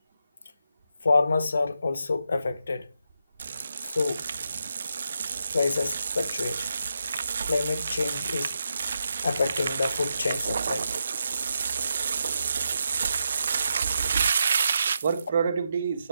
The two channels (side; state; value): both; inverted; correlation -0.84